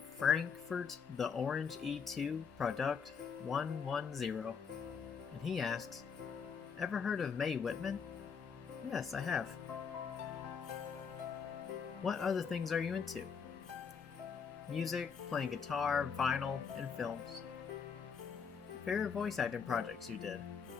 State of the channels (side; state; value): right; quieter; 6.3 dB